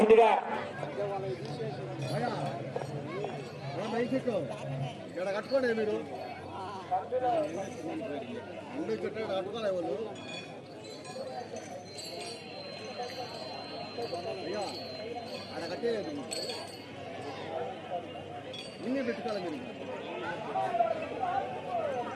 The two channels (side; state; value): both; identical; correlation 1.00